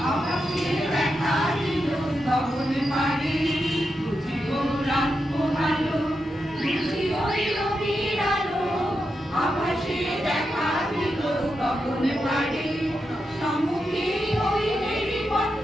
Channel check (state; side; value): normal; both; correlation 0.87